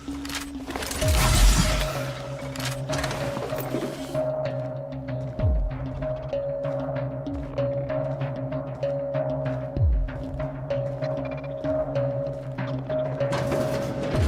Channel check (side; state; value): both; identical; correlation 1.00